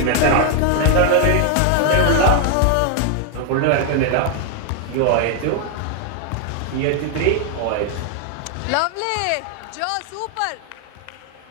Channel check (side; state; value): both; different; correlation 0.00